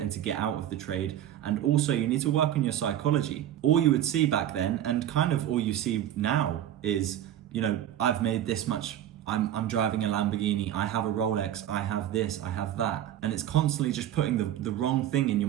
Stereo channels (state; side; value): quieter; left; 11.5 dB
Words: to get out of the trade. And also you need to work on your psychology. All you would see back then, and kind of all you see now, is, I've made this much, I'm driving a Lamborghini, I have a Rolex, I have this, I have that. And it's constantly just putting the wrong thing in your